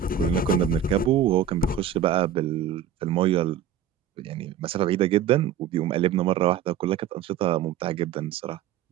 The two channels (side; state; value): left; quieter; 8.9 dB